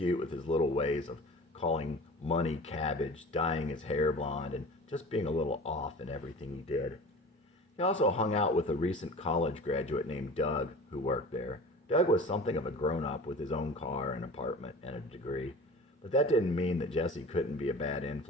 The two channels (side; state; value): both; normal; correlation 0.38